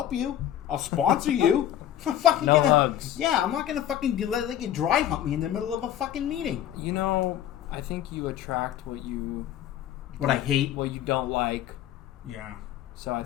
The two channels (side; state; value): right; quieter; 11.4 dB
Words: you. I'll sponsor you. I'm fucking no hugs. Yeah, I'm not gonna fucking let you dry hump me in the middle of a fucking meeting. You know, I think you attract what I hate, what you don't like. Yeah. So I